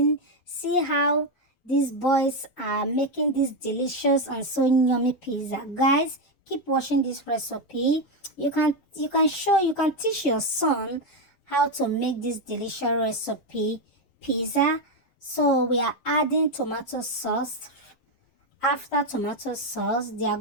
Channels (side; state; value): right; late; 7.6 ms